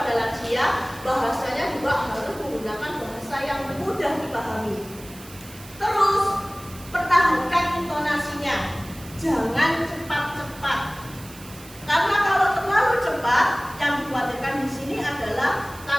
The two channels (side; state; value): right; noise; hiss, 18 dB below the sound